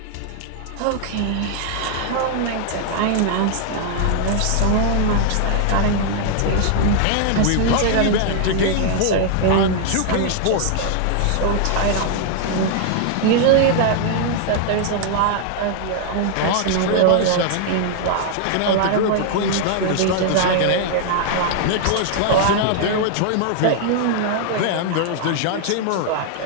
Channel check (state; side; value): different; both; correlation 0.00